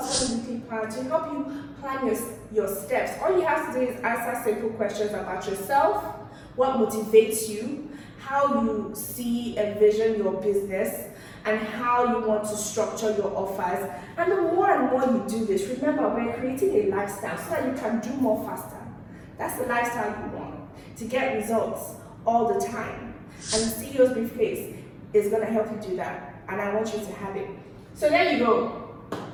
Money Weekly Planner to help you plan your steps. All you have to do is answer simple questions about yourself, what motivates you, how you see and vision your business, and how you want to structure your offers. And the more and more you do this, remember, we're creating a lifestyle so that you can do more faster. That's the lifestyle you want, to get results all the time. And the CEO's Briefcase is going to help you do that, and I want you to have it. So there you go.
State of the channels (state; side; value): identical; both; correlation 1.00